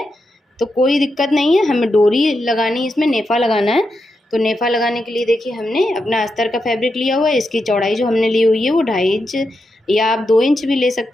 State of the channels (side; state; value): both; normal; correlation 0.86